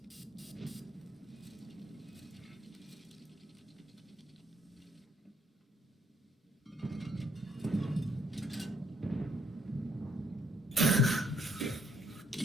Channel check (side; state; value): both; normal; correlation 0.68